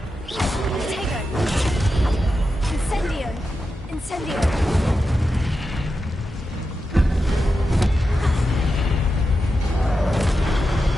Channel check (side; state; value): both; normal; correlation 0.89